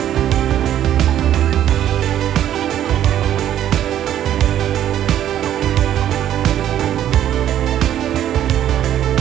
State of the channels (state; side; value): quieter; left; 11.3 dB